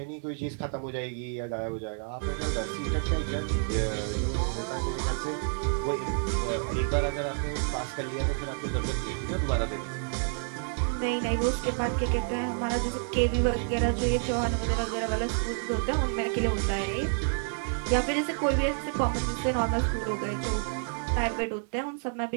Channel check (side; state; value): left; silent; 56 dB below the other